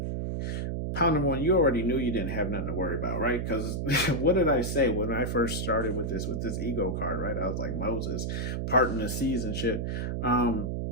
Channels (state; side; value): noise; right; hum, 2 dB below the sound